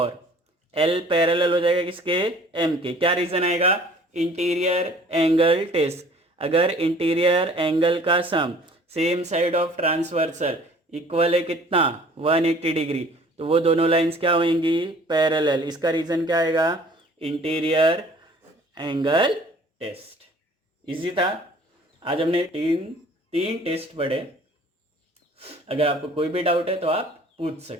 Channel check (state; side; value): normal; both; correlation 0.52